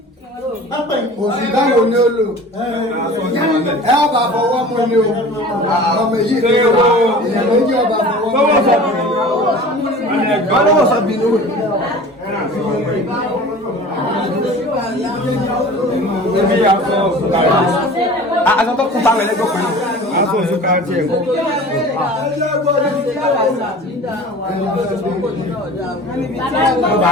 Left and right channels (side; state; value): both; normal; correlation 0.41